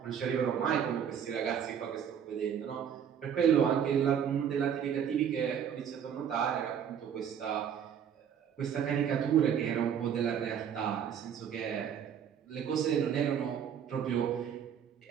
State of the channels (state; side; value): quieter; left; 8.4 dB